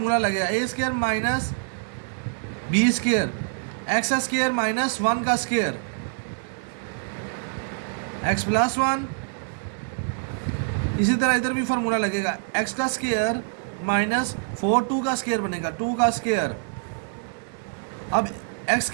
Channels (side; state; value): left; silent; 60 dB below the other